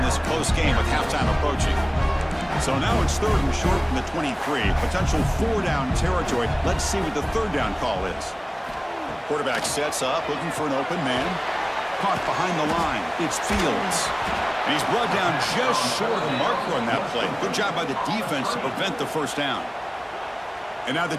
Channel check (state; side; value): identical; both; correlation 1.00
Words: close game with halftime approaching. So now it's 3rd and short from the 23. Potential 4-down territory. Let's see what the 3rd down call is. Quarterback sets up, looking for an open man. Caught behind the line. It's Fields. And he's brought down just short of the marker on that play. Good job by the defense to prevent the 1st down. And now the